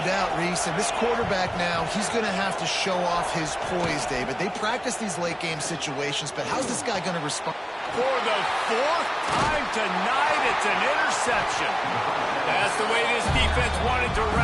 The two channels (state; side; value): identical; both; correlation 1.00